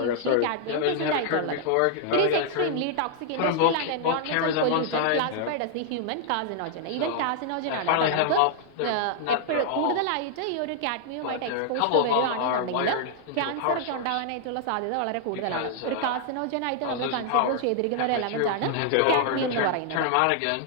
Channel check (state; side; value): different; both; correlation -0.01